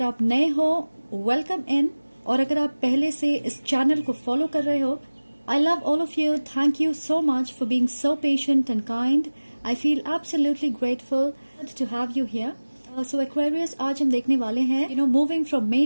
आप नए हो, welcome in. और अगर आप पहले से इस चैनल को फॉलो कर रहे हो, I love all of you. Thank you so much for being so patient and kind. I feel absolutely grateful to have you here. So Aquarius, आज हम देखने वाले हैं, moving from May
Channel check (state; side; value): inverted; both; correlation -1.00